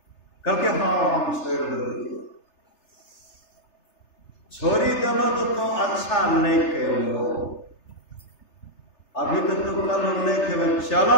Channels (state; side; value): late; right; 3.3 ms